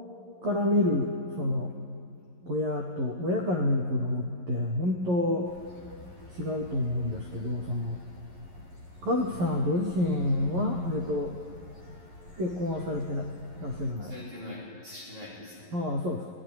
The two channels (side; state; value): left; late; 11 ms